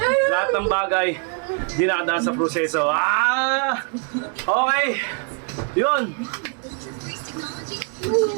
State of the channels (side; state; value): left; quieter; 38.8 dB